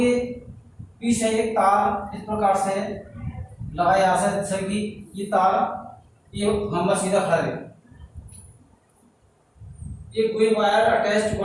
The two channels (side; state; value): both; identical; correlation 1.00